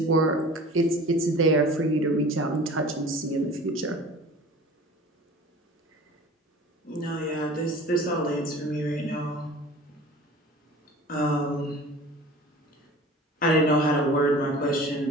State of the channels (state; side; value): normal; both; correlation 0.42